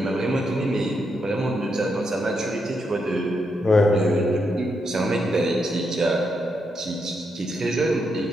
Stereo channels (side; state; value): both; normal; correlation 0.81